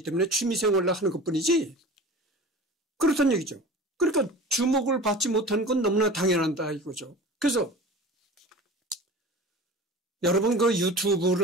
때문에 취미생활로 하는 것뿐이지 그렇다는 얘기죠. 그러니까 주목을 받지 못하는 건 너무나 당연하다 이거죠. 그래서 여러분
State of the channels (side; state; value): both; normal; correlation 0.37